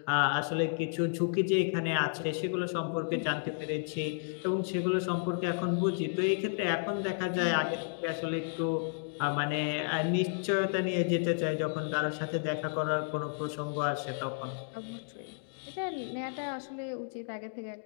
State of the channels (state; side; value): silent; right; digital silence